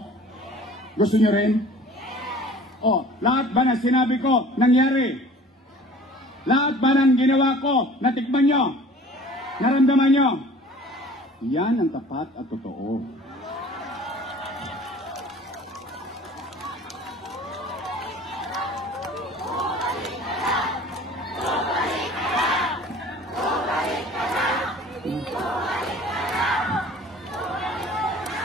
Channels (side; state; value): both; normal; correlation 0.47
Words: Gusto nyo rin? O, lahat ba ng sinabi ko, nangyari? Lahat ba ng ginawa ko, natikman nyo? Naramdaman nyo? Yan ang tapat at totoo.